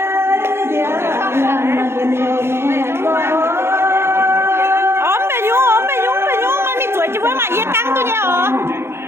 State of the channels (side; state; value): left; late; 0.12 ms